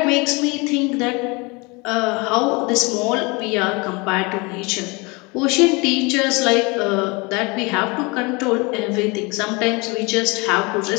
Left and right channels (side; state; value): right; quieter; 27.3 dB